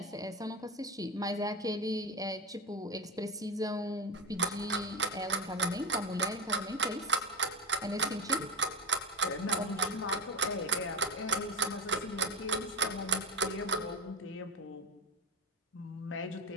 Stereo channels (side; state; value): both; normal; correlation 0.18